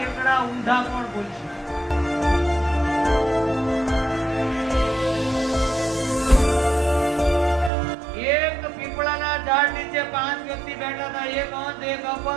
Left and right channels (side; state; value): left; drops out; at 7.7 s